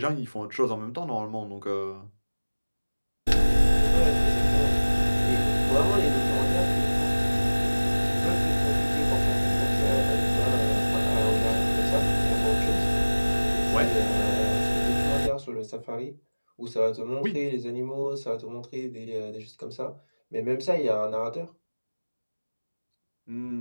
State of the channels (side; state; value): both; inverted; correlation -1.00